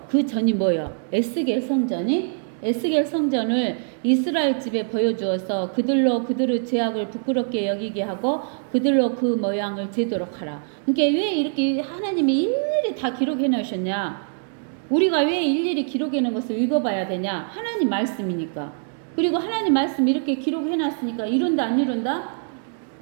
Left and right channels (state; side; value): silent; left; digital silence